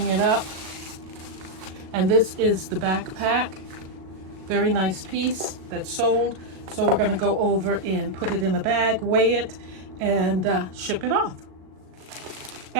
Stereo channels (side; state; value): left; late; 37 ms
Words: it up. And this is the backpack. Very nice piece that's sold. So we're gonna go over and put it in a bag, weigh it, and ship it off.